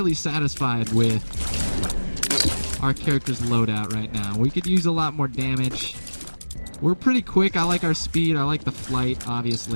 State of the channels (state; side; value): inverted; both; correlation -1.00